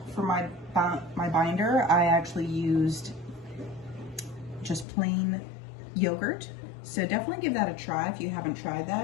for my binder, I actually used just plain yogurt. So definitely give that a try if you haven't tried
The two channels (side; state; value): right; drops out; at 4.9 s